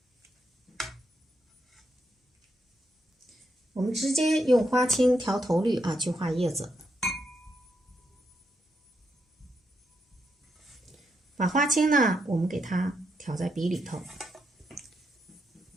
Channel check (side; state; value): both; normal; correlation 0.81